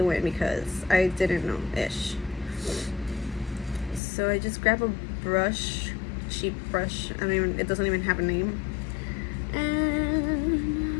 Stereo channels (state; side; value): drops out; right; at 4.0 s